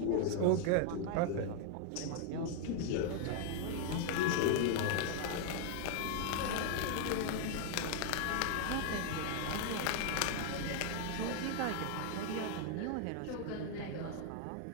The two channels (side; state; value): both; different; correlation 0.00